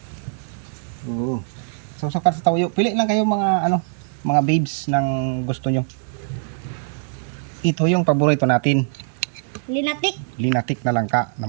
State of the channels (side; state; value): left; silent; digital silence